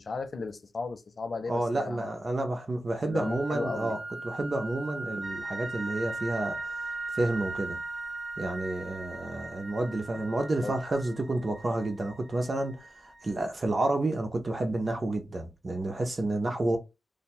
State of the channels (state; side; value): normal; both; correlation 0.93